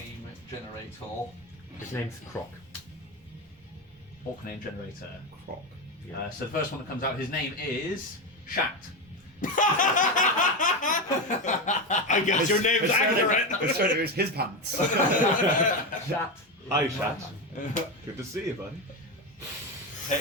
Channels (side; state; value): both; normal; correlation 0.15